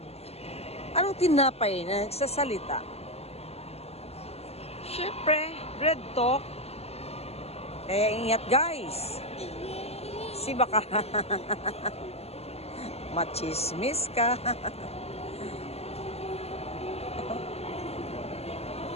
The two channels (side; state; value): right; late; 0.30 ms